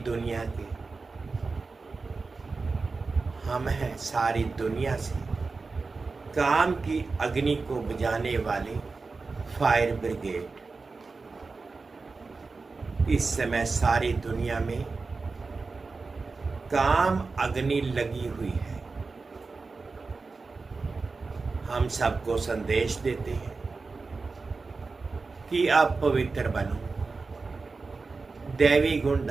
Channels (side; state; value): left; quieter; 4.1 dB